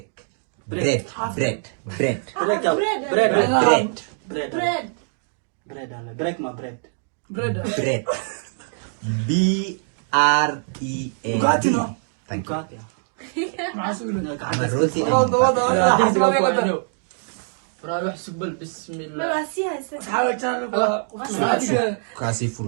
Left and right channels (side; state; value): left; silent; digital silence